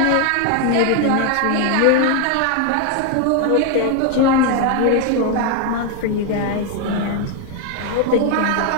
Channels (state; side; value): different; both; correlation 0.01